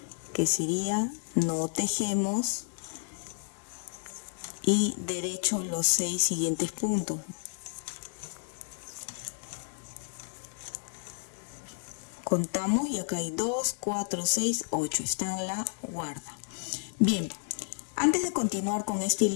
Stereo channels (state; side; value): silent; right; 57 dB below the other